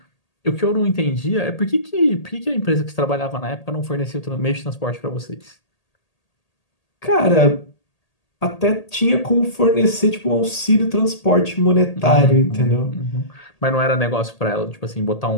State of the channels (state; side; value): late; right; 1.8 ms